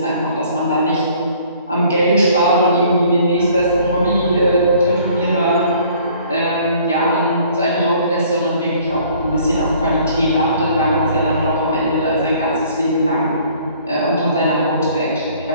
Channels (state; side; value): inverted; both; correlation -0.56